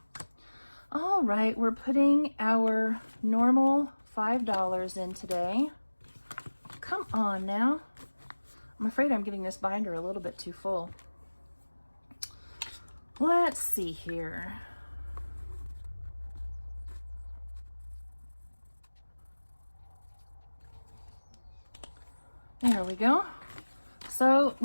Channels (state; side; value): inverted; both; correlation -1.00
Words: All right, we're putting our normal $5 in today. Come on now. I'm afraid I'm getting this binder a little bit too full. Let's see here. There we go. So